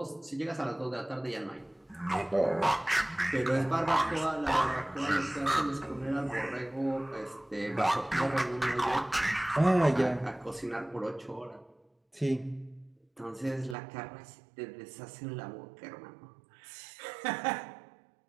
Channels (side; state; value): left; drops out; at 13.8 s